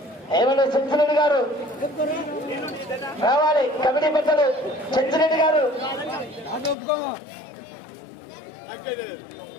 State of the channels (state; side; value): drops out; right; at 6.8 s